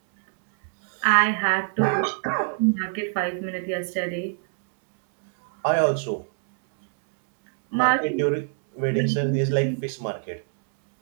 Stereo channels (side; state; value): left; silent; digital silence